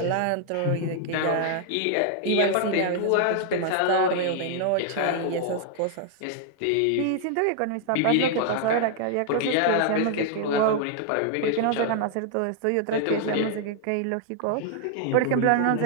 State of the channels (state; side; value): different; both; correlation 0.00